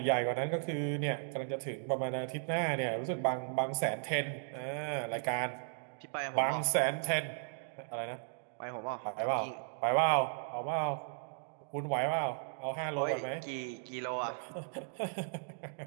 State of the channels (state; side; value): silent; left; digital silence